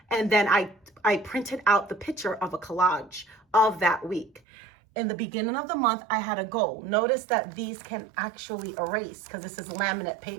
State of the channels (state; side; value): drops out; left; at 4.4 s